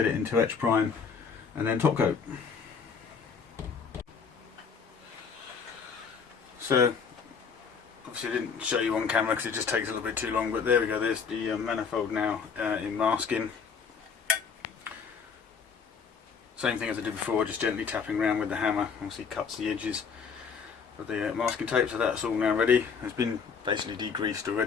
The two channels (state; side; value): quieter; right; 5.9 dB